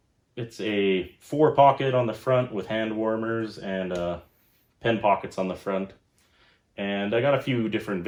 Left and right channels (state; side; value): identical; both; correlation 1.00